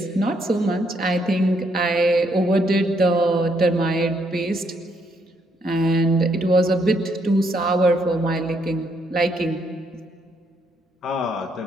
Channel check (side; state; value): both; normal; correlation 0.73